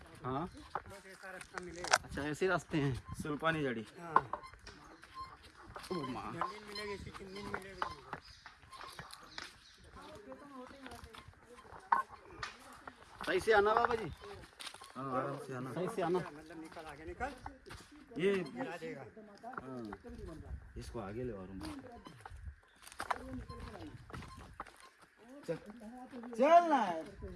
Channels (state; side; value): identical; both; correlation 1.00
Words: हाँ, बस ऐसा रास्ता मिलेगा। अच्छा ऐसे रास्ते हैं। सुल्पानी जड़ी। हाँ, ओ माँ, जमीन मिलेगी, इसी जमीन मिलेगी तुमको। सही से आना बाबा जी, हाँ, आराम से आना। सही से आना। मतलब निकल आगे निकल, ये गिरा देगा। हाँ, इसको आगे ले और चल ना।